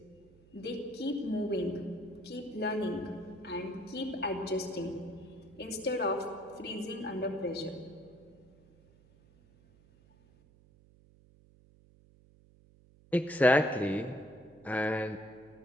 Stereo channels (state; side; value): noise; right; hum, 27 dB below the sound